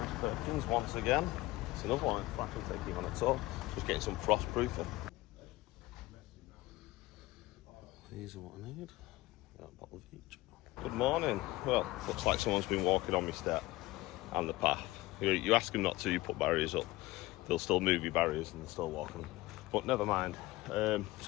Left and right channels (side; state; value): right; quieter; 19.3 dB